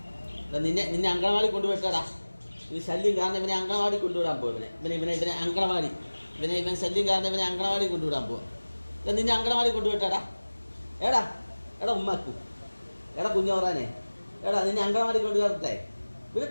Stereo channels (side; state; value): both; inverted; correlation -1.00